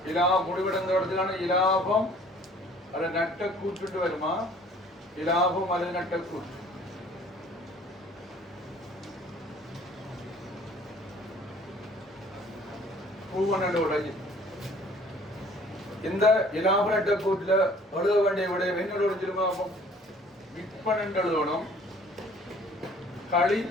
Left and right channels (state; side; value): normal; both; correlation 0.54